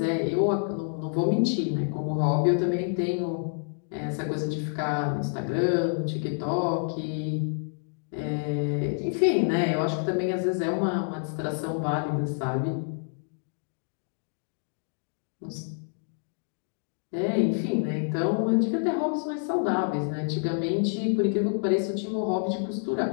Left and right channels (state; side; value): silent; right; digital silence